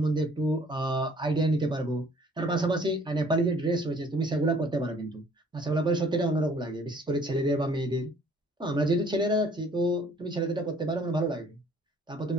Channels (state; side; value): normal; both; correlation 0.57